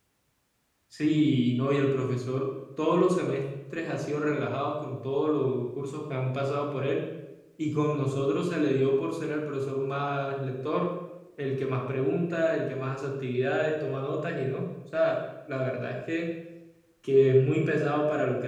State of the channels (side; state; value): both; identical; correlation 1.00